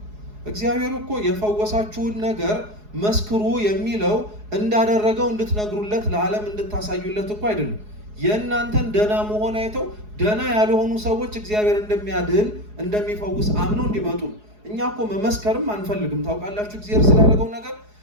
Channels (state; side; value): late; left; 4.8 ms